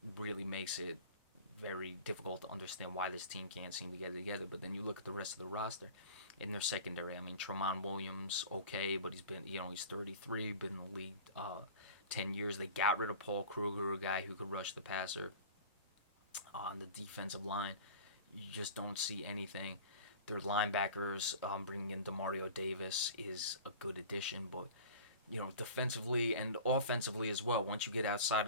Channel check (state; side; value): inverted; both; correlation -0.39